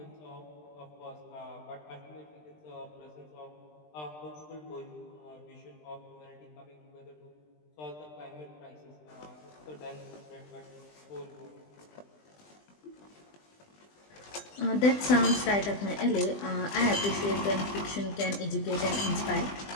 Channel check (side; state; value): right; late; 20 ms